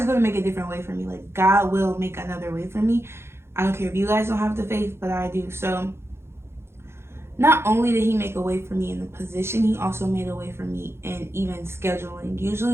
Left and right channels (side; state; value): left; late; 0.12 ms